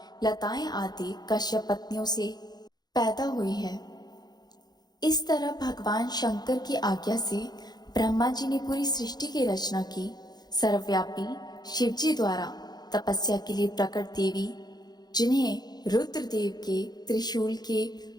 लताएं आदि कश्यप पत्नियों से पैदा हुई है। इस तरह भगवान शंकर की आज्ञा से ब्रह्मा जी ने पूरी सृष्टि की रचना की। सर्वव्यापी शिव जी द्वारा तपस्या के लिए प्रकट देवी, जिन्हें रुद्रदेव के त्रिशूल के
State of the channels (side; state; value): right; late; 0.20 ms